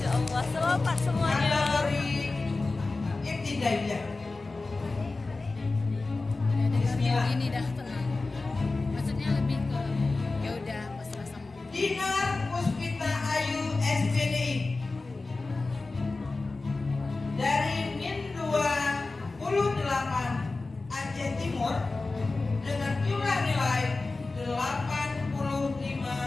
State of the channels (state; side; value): quieter; right; 3.5 dB